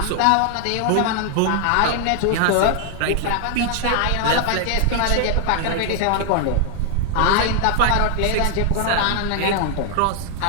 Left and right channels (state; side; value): different; both; correlation 0.00